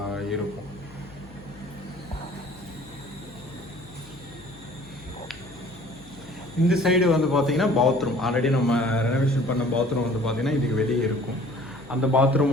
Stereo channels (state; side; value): noise; left; hum, 21 dB below the sound